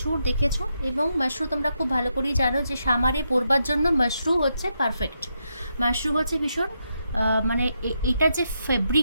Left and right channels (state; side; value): inverted; both; correlation -0.82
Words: দেখেছো এবং মাশরু তোমরা খুব ভালো করেই জানো যে সামারে পরবার জন্য মাশরু হচ্ছে পারফেক্ট। মাশরু হচ্ছে ভীষণ মানে এটা যে